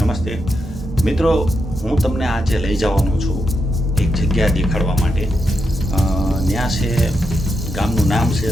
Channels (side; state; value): both; normal; correlation 0.84